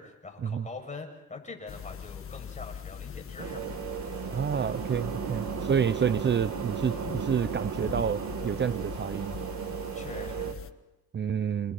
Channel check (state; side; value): quieter; left; 5.8 dB